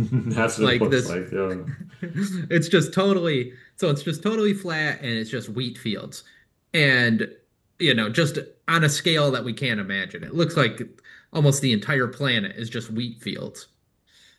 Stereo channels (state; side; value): identical; both; correlation 1.00